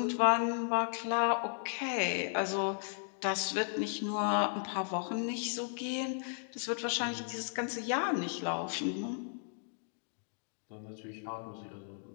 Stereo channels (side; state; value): right; silent; digital silence